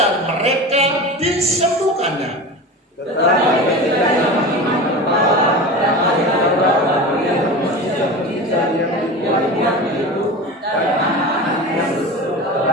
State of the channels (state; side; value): normal; both; correlation 0.30